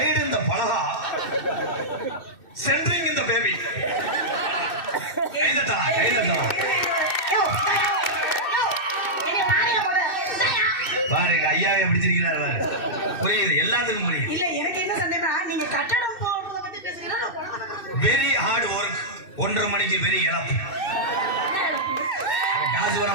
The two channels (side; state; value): right; late; 2.6 ms